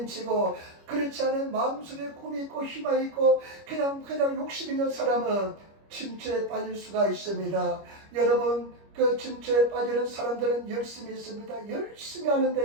그렇지 않은 마음속에 꿈이 있고 희망이 있고 그냥 욕심 있는 사람은 침체에 빠질 수가 있습니다. 여러분, 그 침체에 빠지는 사람들은 열심히 있습니다. 열심히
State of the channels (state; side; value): late; left; 25 ms